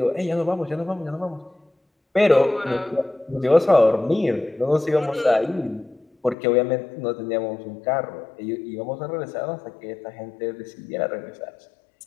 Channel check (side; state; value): right; drops out; at 6.4 s